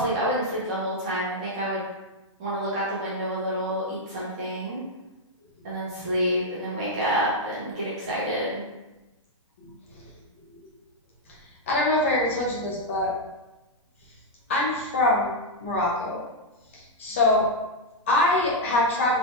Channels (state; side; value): normal; both; correlation -0.02